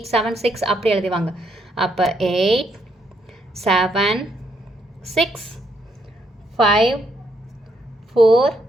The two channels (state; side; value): normal; both; correlation 0.74